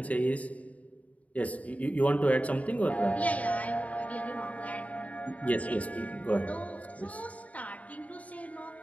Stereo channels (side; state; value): right; late; 0.069 ms